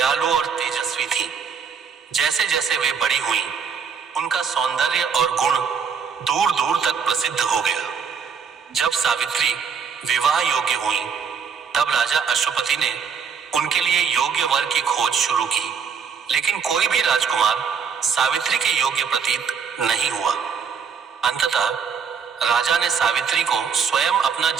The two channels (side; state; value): left; quieter; 6.5 dB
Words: और तेजस्वी थी। जैसे जैसे वे बड़ी हुईं, उनका सौंदर्य और गुण दूर दूर तक प्रसिद्ध हो गया। जब सावित्री विवाह योग्य हुई, तब राजा अश्वपति ने उनके लिए योग्य वर की खोज शुरू की, लेकिन कोई भी राजकुमार सावित्री के योग्य प्रतीत नहीं हुआ। अंततः राजा ने सावित्री को स्वयं अपना